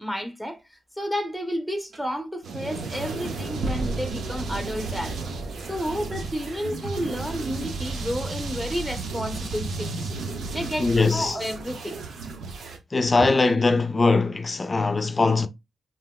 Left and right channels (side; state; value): both; normal; correlation 0.90